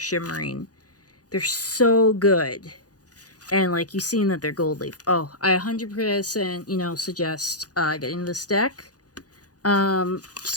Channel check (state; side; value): late; right; 0.68 ms